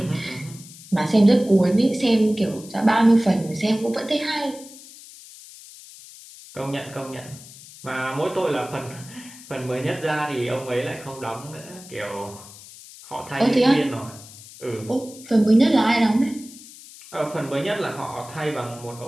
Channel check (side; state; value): left; noise; hiss, 18 dB below the sound